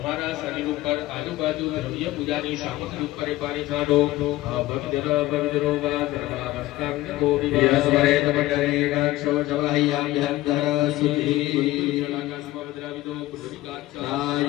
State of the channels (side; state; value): right; quieter; 16.8 dB